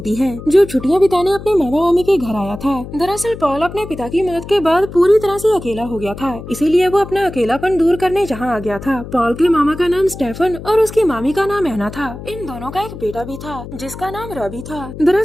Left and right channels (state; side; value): noise; left; hum, 12 dB below the sound